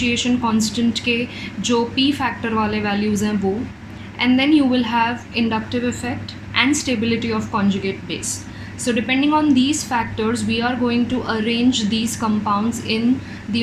constant के जो p फैक्टर वाले वैल्यूज़ हैं वो, and then you will have inductive effect and stability of conjugate base. So depending on these factors we are going to arrange these compounds in the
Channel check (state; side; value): identical; both; correlation 1.00